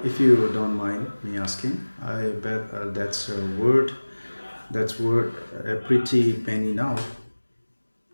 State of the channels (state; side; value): inverted; both; correlation -1.00